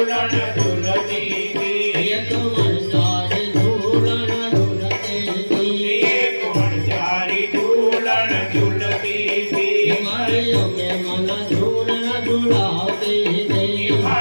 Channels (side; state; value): both; inverted; correlation -1.00